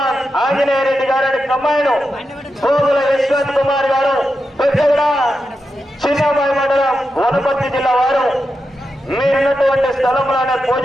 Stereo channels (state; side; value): normal; both; correlation 0.88